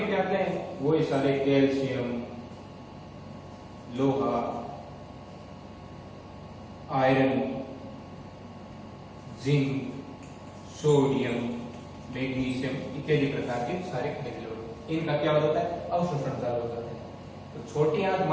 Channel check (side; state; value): both; identical; correlation 1.00